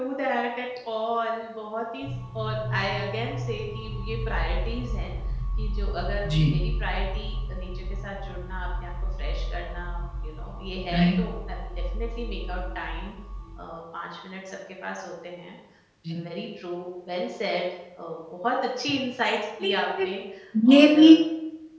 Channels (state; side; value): identical; both; correlation 1.00